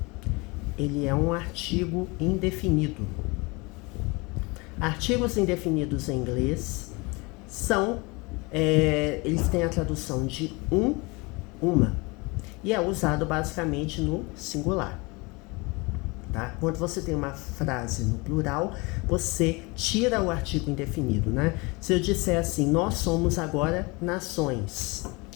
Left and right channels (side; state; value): right; quieter; 26.5 dB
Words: ele é um artigo indefinido. Artigos indefinidos em inglês são, eles têm a tradução de uma, e é usado basicamente no singular. Tá? Quando você tem uma frase no plural, você tira o artigo indefinido, né? Se eu disser assim, nós somos agora nações,